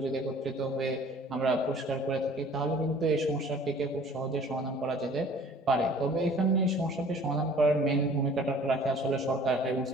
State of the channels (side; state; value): both; normal; correlation 0.50